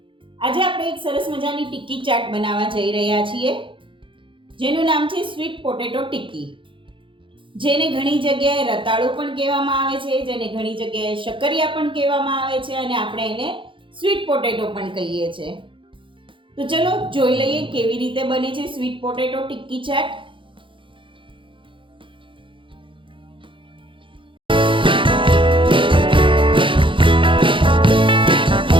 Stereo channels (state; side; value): late; left; 0.25 ms